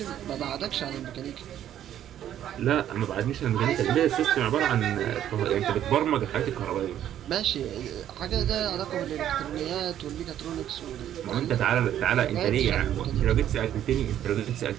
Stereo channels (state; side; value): quieter; left; 11.0 dB